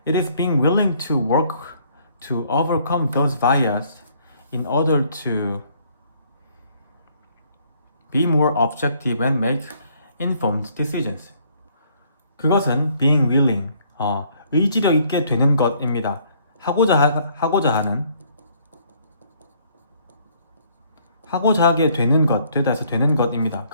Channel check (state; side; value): inverted; both; correlation -0.63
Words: It is being willing to work to overcome those biases in order to be more objective and make informed decisions. 그것은 being willing, 의지력 있게 되는 것입니다. 하고자 하게 되는 것, 되다 해서 되는 것입니다.